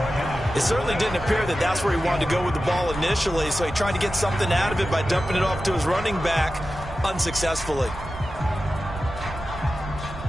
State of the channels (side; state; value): right; noise; rumble, 11 dB below the sound